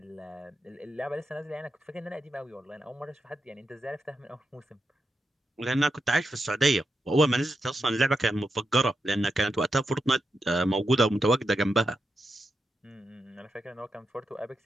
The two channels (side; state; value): both; normal; correlation 0.86